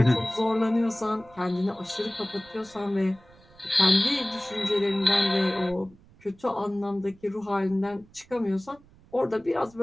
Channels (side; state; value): right; noise; rumble, 26 dB below the sound